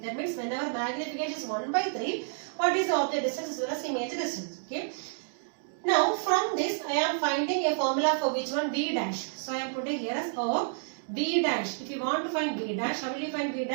That means whenever magnification is 1 by 3, what is the object distance as well as image distance? Okay. Now from this I am finding a formula for which one? V dash. So I am putting here as O V dash. If you want to find V dash, how will you find V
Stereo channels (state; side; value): silent; left; digital silence